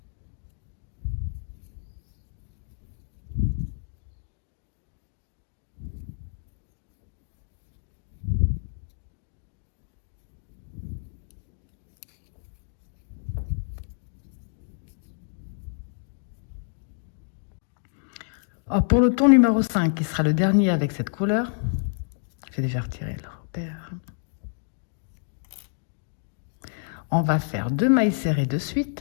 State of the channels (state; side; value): silent; right; digital silence